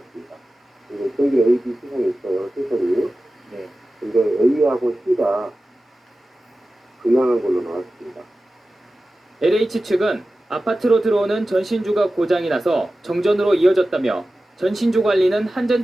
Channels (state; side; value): normal; both; correlation 0.95